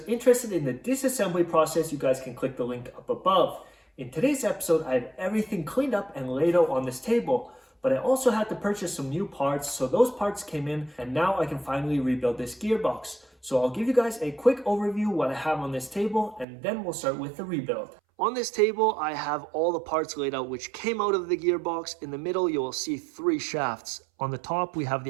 interested in the disassembly process, you guys can click the link up above. In today's episode, I have everything cleaned up and laid out on this table, but I also had to purchase some new parts, so those parts came in, and now I can finally rebuild this gearbox. So I'll give you guys a quick overview what I have on this table, and then we'll start with the rebuild. On this table, I have all the parts laid out which came out of the gearbox. In the middle, you will see 3 shafts. On the top, we have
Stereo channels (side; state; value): left; drops out; at 16.4 s